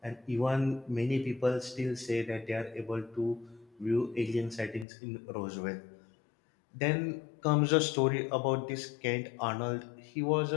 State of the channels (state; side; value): drops out; right; at 4.9 s